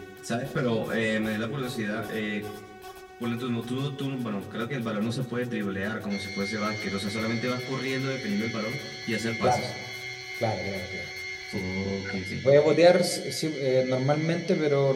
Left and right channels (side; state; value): both; identical; correlation 1.00